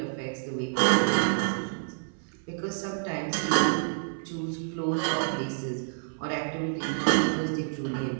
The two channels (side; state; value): left; silent; 59 dB below the other